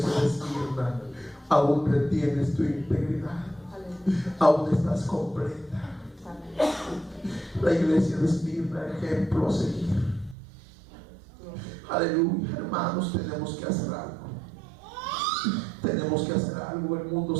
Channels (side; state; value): left; drops out; at 10.4 s